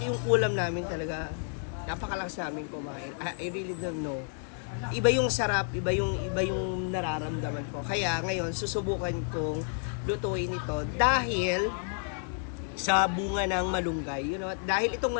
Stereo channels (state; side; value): silent; right; 58 dB below the other